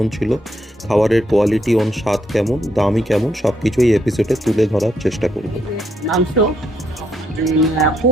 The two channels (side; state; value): both; normal; correlation 0.75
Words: ছিল, খাবারের কোয়ালিটি স্বাদ কেমন, দামই কেমন, সব কিছুই এপিসোডে তুলে ধরার চেষ্টা করব। মাংস